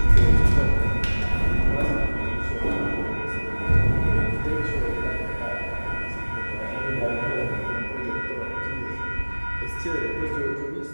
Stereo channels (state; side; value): inverted; both; correlation -1.00